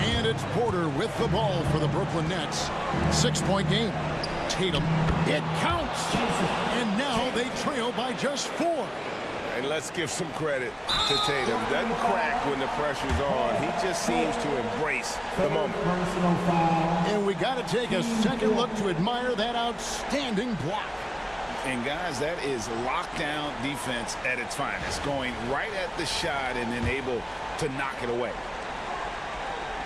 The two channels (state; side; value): identical; both; correlation 1.00